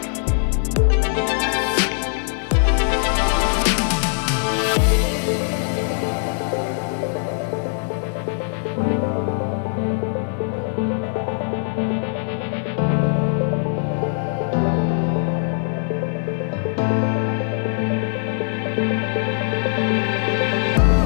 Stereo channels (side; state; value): right; silent; digital silence